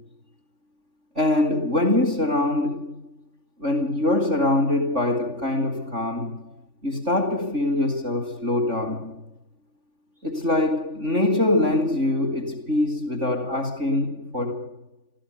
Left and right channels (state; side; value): late; left; 3.5 ms